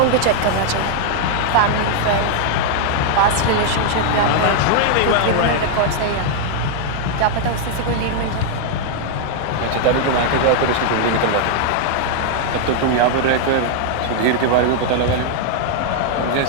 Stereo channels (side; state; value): both; different; correlation 0.00